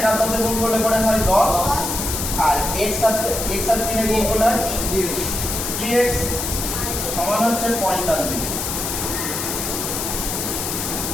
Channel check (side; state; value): left; noise; hiss, 3 dB below the sound